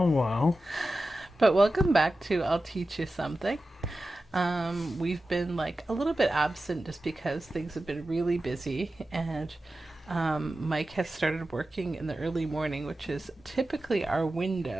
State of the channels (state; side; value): normal; both; correlation 0.94